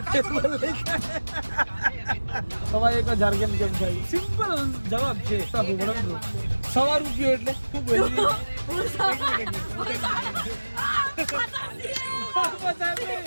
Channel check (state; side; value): inverted; both; correlation -1.00